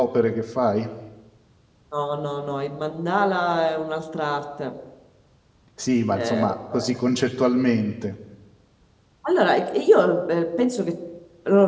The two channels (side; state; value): both; identical; correlation 1.00